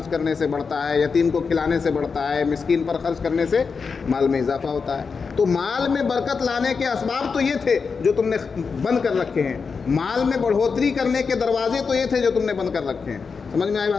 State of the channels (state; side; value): quieter; right; 5.3 dB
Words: کرنے سے بڑھتا ہے، یتیم کو کھلانے سے بڑھتا ہے، مسکین پر خرچ کرنے سے مال میں اضافہ ہوتا ہے۔ تو مال میں برکت لانے کے اسباب تو یہ تھے جو تم نے بند کر رکھے ہیں، مال میں بڑھوتری کرنے کے دروازے تو یہ تھے جو تم نے بند کر رکھے ہیں۔ سمجھ میں آئی